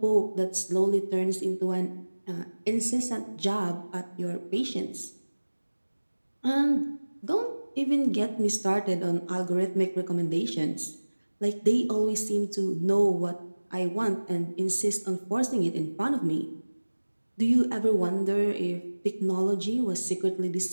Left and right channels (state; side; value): inverted; both; correlation -1.00